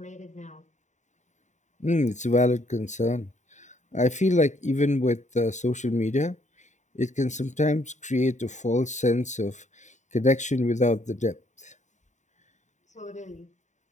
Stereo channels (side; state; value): right; late; 0.35 ms